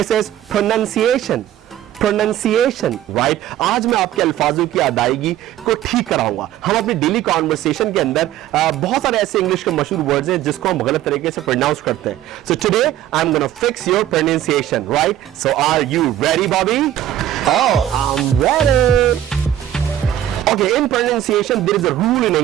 is pronunciation. Pronunciation, right? आज मैं आपके अल्फाजों की अदायगी को ठीक कराऊंगा. हम अपनी डेली कॉन्वर्सेशन के अंदर बहुत सारे ऐसे इंग्लिश के मशहूर वर्ड्स हैं जिसको हम गलत तरीके से प्रोनाउंस करते हैं. So today I'm gonna fix your pronunciation, right? So are you ready, Bobby? Oh, I'm ready. Okay, in pronunciation there is a rule in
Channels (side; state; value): left; quieter; 12.1 dB